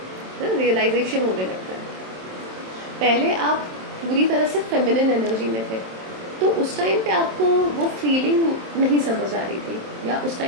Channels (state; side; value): late; left; 27 ms